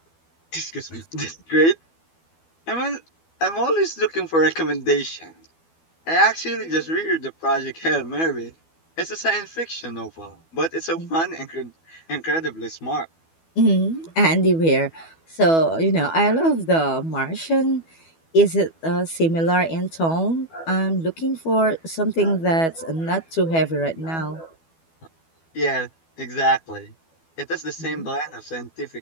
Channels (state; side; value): late; right; 12 ms